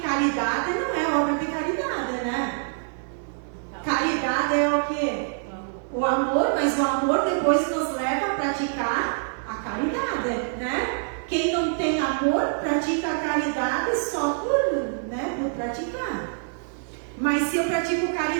caridade não é obra de caridade, né? Caridade é o quê? O amor, mas o amor depois nos leva a praticar a caridade, né? Quem não tem amor pratica a caridade só por praticar. Mas se eu pratico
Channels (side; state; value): left; silent; 61 dB below the other